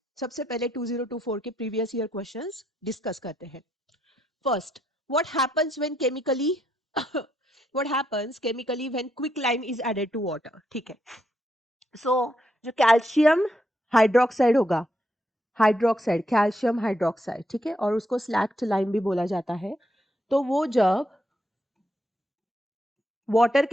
सबसे पहले 2024 के प्रीवियस ईयर क्वेश्चंस डिस्कस करते हैं. First, what happens when chemically what happens chemically when quick lime is added to water. ठीक है. सो जो कैल्शियम हाइड्रोक्साइड होगा, हाइड्रोक्साइड कैल्शियम हाइड्रोक्साइड, ठीक है, और उसको स्लैक्ट लाइम भी बोला जाता है. तो वो जब वाटर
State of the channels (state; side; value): normal; both; correlation 0.78